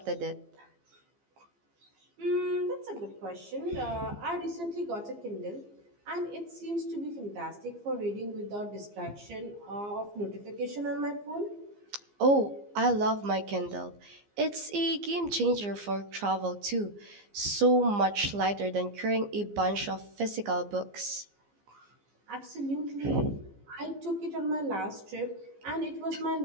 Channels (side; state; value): left; late; 15 ms